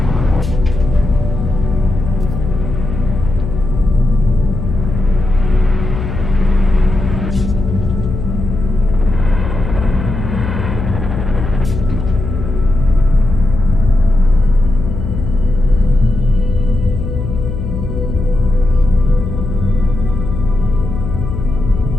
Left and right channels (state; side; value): noise; left; hum, 5 dB below the sound